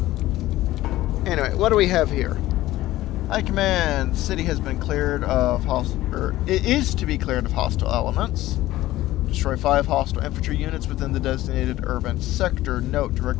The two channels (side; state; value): right; quieter; 16.0 dB